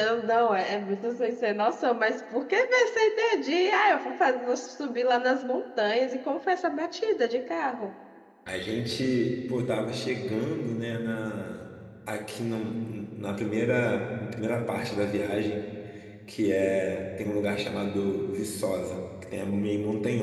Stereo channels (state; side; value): identical; both; correlation 1.00